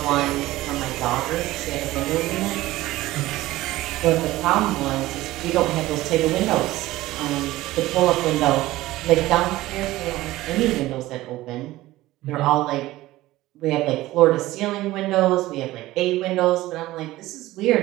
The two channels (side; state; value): left; quieter; 17.0 dB